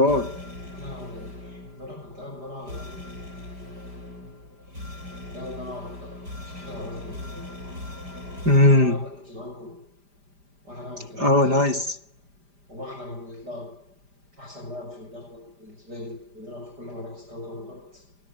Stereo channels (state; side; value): late; left; 5.0 ms